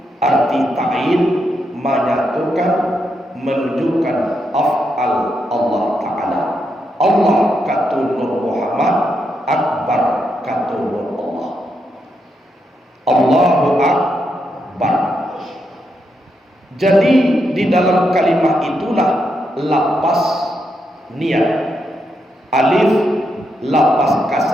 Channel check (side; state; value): both; normal; correlation 0.82